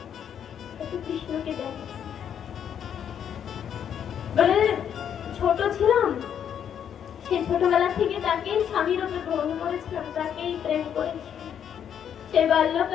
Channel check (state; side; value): quieter; right; 8.8 dB